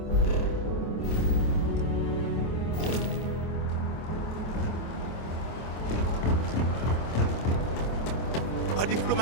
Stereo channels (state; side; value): late; right; 25 ms